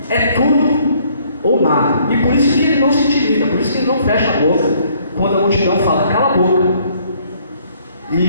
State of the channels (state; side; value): inverted; both; correlation -0.63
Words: é tudo ou nada. E por isso que ele não se intimida, por isso que ele não fecha a boca quando a multidão fala, cala a boca.